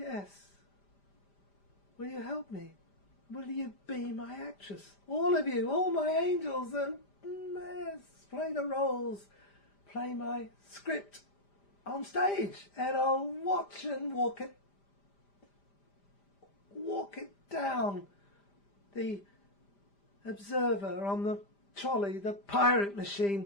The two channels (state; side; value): late; right; 5.0 ms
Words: Will you help me? Will you be my actress? All of you, all my angels, and yes, play the roles, play my script on stage, and I'll watch and walk it down. The observer on the trolley, the pirate